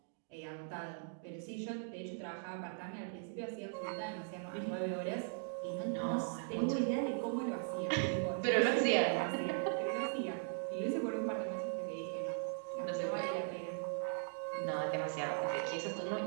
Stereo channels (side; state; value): left; silent; digital silence